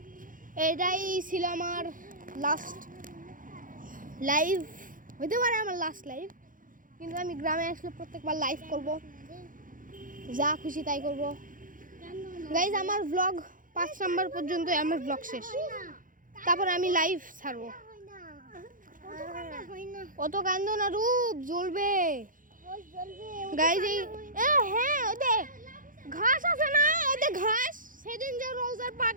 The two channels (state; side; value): late; left; 0.39 ms